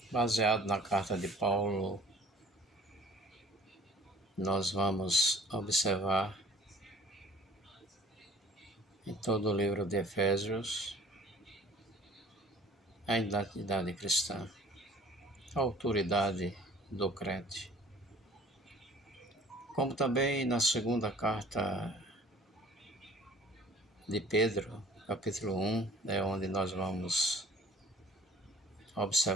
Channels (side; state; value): both; normal; correlation 0.50